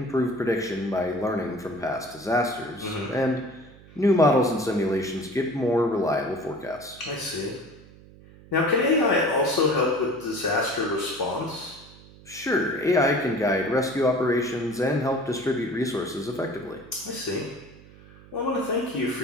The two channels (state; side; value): noise; right; hum, 22 dB below the sound